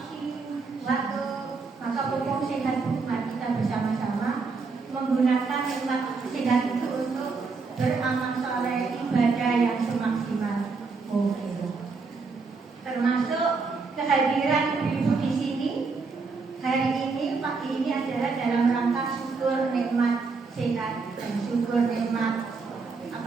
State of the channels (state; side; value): quieter; left; 4.4 dB